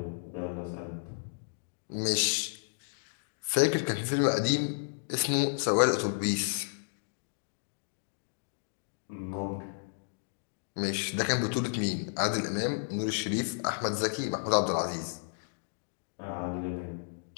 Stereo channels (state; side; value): silent; right; digital silence